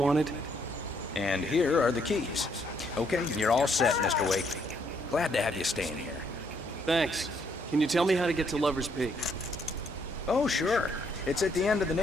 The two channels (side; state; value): both; normal; correlation 0.71